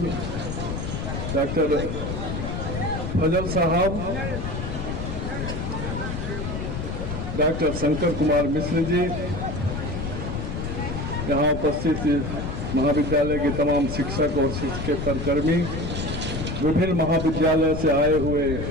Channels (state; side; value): noise; left; rumble, 4 dB below the sound